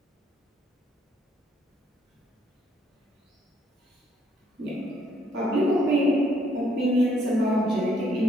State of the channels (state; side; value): normal; both; correlation 0.68